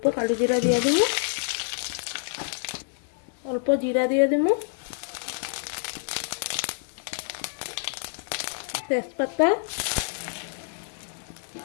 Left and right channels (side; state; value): right; silent; digital silence